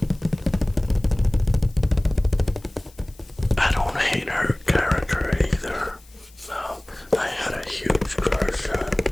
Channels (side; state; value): left; noise; hiss, 27 dB below the sound